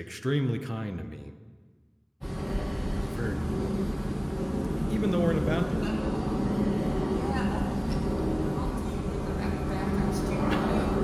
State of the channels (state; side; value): identical; both; correlation 1.00